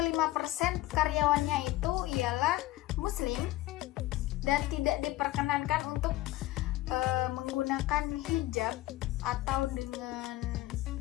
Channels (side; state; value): right; quieter; 17.0 dB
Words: karyawannya itu ialah muslim dan tidak diperkenankan untuk menggunakan hijab atau dengan